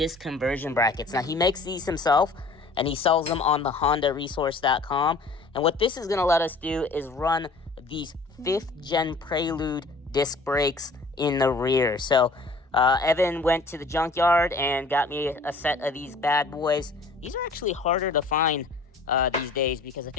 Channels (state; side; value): quieter; right; 3.6 dB